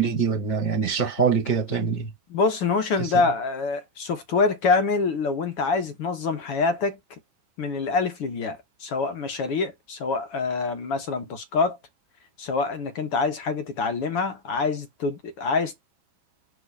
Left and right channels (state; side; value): late; right; 7.9 ms